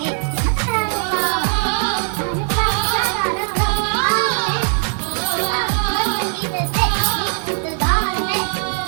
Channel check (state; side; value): silent; left; 58 dB below the other